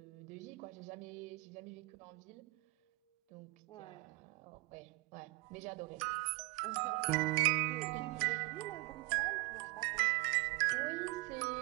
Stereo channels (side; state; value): left; quieter; 25.9 dB